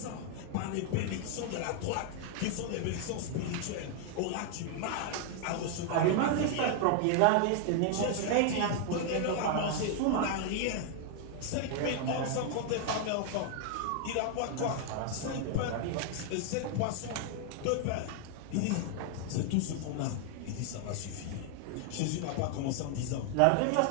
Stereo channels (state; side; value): different; both; correlation 0.00